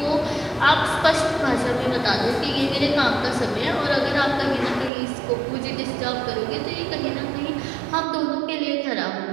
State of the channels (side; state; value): left; drops out; at 4.9 s